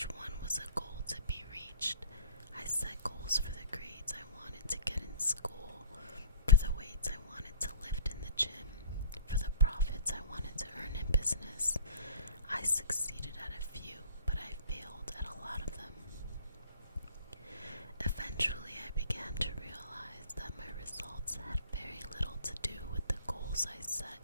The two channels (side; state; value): both; inverted; correlation -0.45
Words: one was a goal to be reached. I set goals for the grades I wanted to get in school, for the weights I wanted to lift in the gym, for the profits I wanted to earn in business. I succeeded at a few, but I failed at a lot of them. Eventually, I began to realize that my results had very little to do with the goals I set